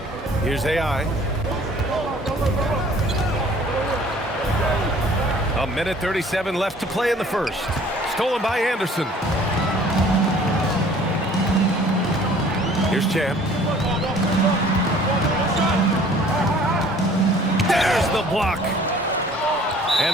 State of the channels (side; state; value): both; normal; correlation 0.53